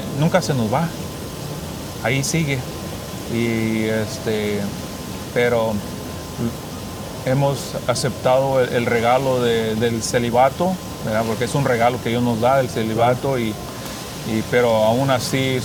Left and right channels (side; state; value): both; identical; correlation 1.00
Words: nunca se nos va. Ahí sigue. Pero hemos aceptado el regalo del celibato, ¿verdad? Porque es un regalo que Dios nos da, el celibato, pero aún así